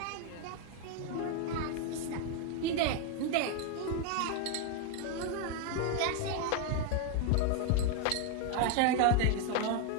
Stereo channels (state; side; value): different; both; correlation 0.01